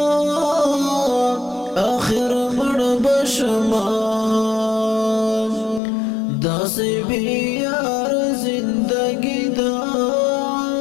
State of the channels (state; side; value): drops out; right; at 5.8 s